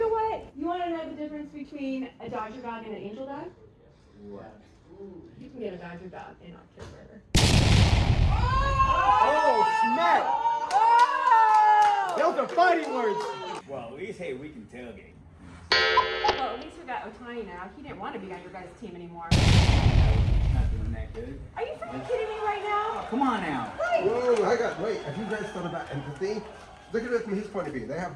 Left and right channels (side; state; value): both; identical; correlation 1.00